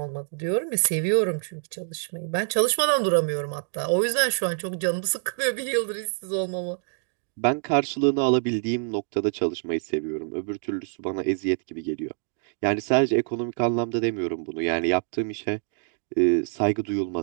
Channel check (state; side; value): silent; left; digital silence